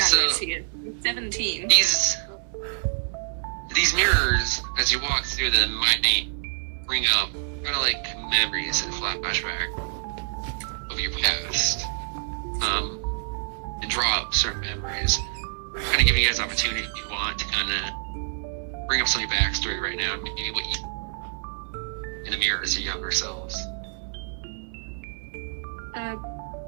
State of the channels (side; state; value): left; silent; 60 dB below the other